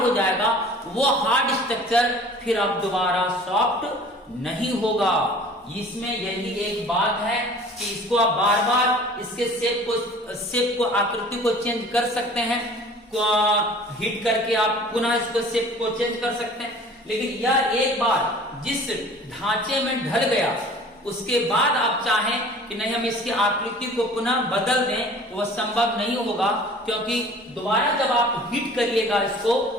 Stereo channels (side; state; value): both; normal; correlation 0.47